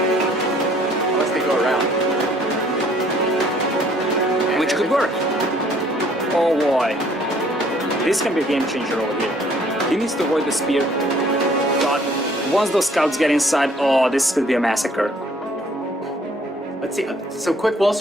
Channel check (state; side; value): normal; both; correlation 0.60